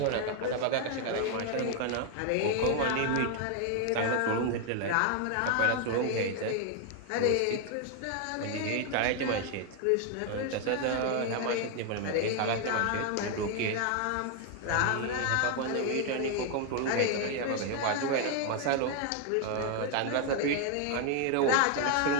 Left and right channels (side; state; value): both; different; correlation 0.00